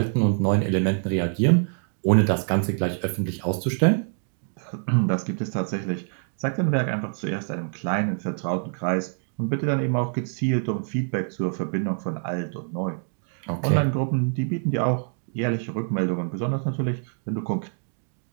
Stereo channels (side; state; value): left; silent; 57 dB below the other